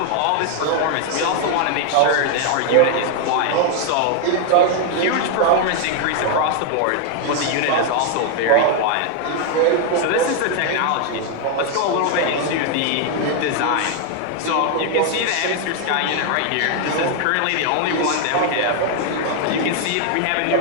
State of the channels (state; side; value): different; both; correlation 0.00